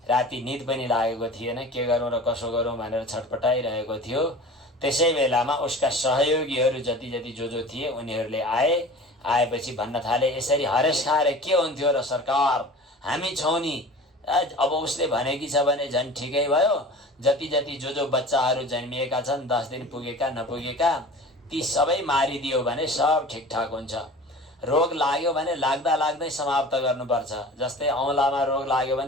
राति निद पनि लागेको थिएन, के गरौँ र कसो गरौँ भनेर छटपटाइरहेको थियो। त्यसै बेलामा उसका सहयोगीहरू जति जो थिए उनीहरूले आएपछि भन्न थाले, यसरी हरेस खाएर के हुन्थ्यो र सरकार, हामी छौँ नि। अब उसले भनेकी छ भने झन् ठिकै भयो। जति जो बच्चाहरू जन्मिएका छन्, 10 दिन पुगेका नपुगेका, ती सबै मारिदियो भने सब ठिकठाक हुन्छ। रोग लाग्यो भने लाग्दै समाप्त गर्नुपर्छ। जस्तै औँलामा रोग लाग्यो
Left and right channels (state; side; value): normal; both; correlation 0.39